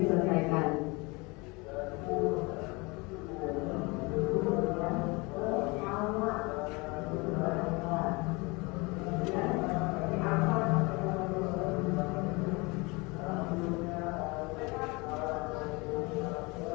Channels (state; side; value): quieter; right; 26.4 dB